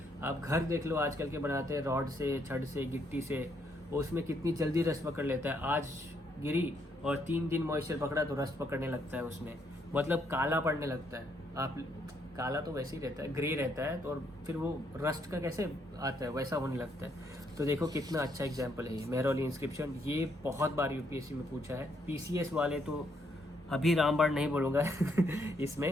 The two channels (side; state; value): both; normal; correlation 0.73